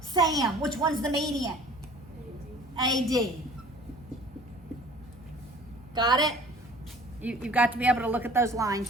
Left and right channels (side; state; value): both; normal; correlation 0.48